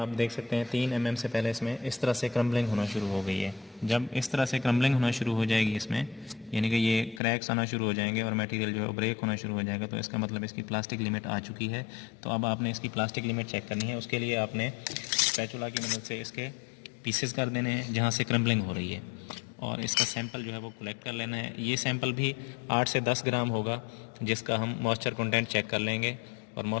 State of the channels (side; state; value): right; drops out; at 7.2 s